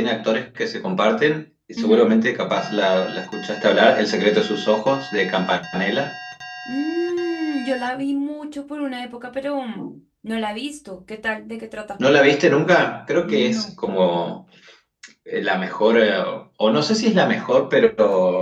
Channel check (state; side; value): identical; both; correlation 1.00